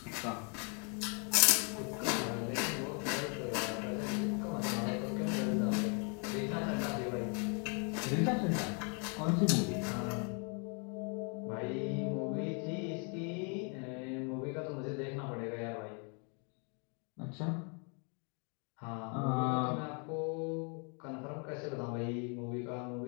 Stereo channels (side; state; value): right; quieter; 37.4 dB